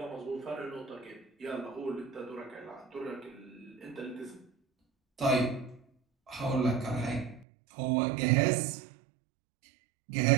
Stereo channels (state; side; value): drops out; left; at 7.5 s